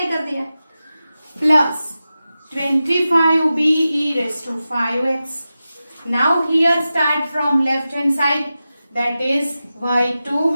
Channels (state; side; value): inverted; both; correlation -0.93